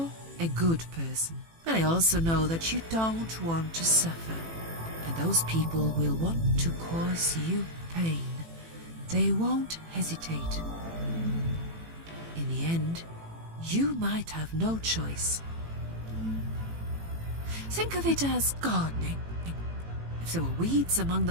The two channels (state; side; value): late; left; 18 ms